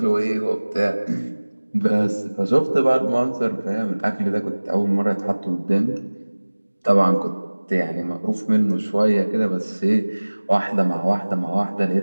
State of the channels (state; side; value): inverted; both; correlation -1.00